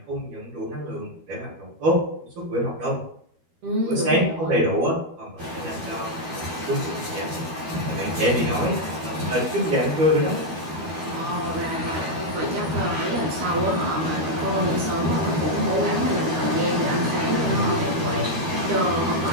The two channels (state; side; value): late; left; 13 ms